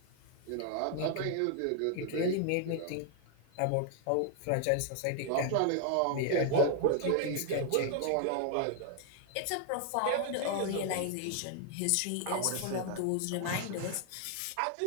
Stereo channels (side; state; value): both; different; correlation 0.00